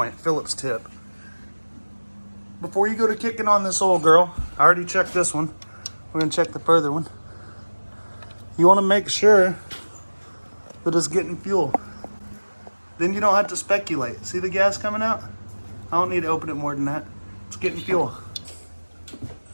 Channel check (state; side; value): inverted; both; correlation -1.00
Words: Phillips tip. Before you go to kicking on this old girl, I already checked this one. We're gonna check the further one. You wanna make sure that it's getting fuel. Then you don't have to speculate. See the gas coming out? I don't need to open it more than that. It's getting fuel.